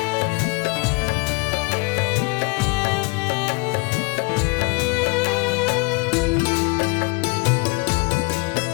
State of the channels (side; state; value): right; quieter; 29.5 dB